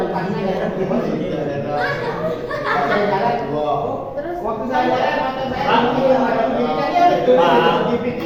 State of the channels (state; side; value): identical; both; correlation 1.00